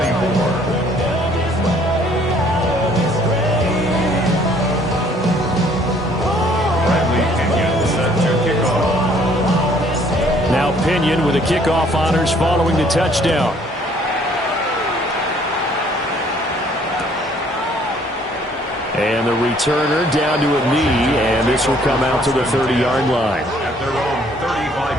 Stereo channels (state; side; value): normal; both; correlation 0.61